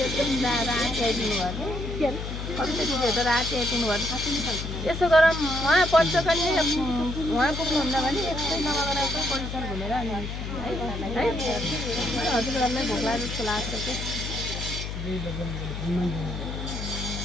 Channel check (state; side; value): noise; left; hum, 6 dB below the sound